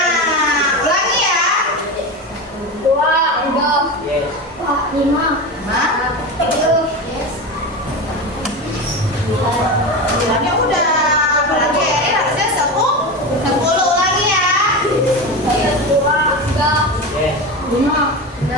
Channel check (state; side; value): normal; both; correlation 0.22